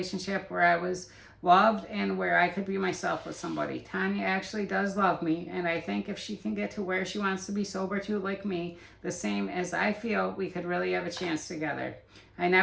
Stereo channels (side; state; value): both; identical; correlation 1.00